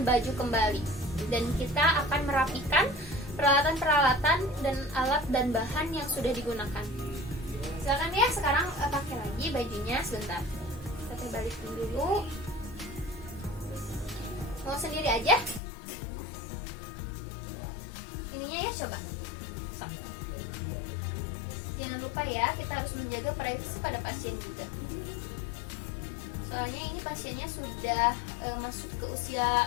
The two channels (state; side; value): drops out; right; at 15.6 s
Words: baju kembali, dan kita akan merapikan peralatan-peralatan dan alat dan bahan yang sudah digunakan. Silakan ya, sekarang pakai lagi bajunya sebentar. Kita balikin dulu. Mau sendiri aja? Ininya ya, coba. So. Jangan lupa ya, kita harus menjaga privasi pada pasien juga. Soalnya ini pasiennya sudah masuk ke